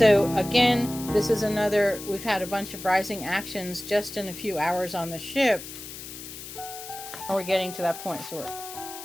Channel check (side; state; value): left; noise; hiss, 12 dB below the sound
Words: again, this is another, we've had a bunch of rising actions just in a few hours on the ship. And we're getting to that point. So